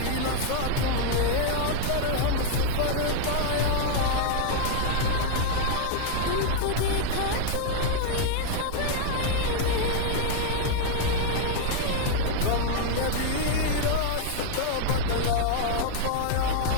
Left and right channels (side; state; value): both; different; correlation -0.01